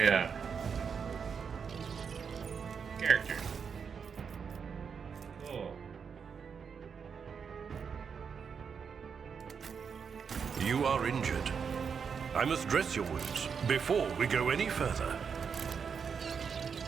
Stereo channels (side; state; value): left; quieter; 6.4 dB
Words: character. Cool. You are injured. I must dress your wounds before we go any further.